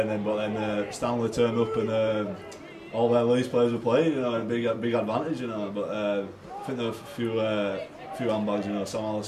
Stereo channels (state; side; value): identical; both; correlation 1.00